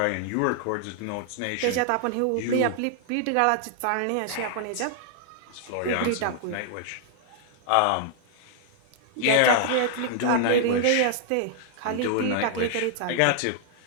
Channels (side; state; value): both; different; correlation -0.01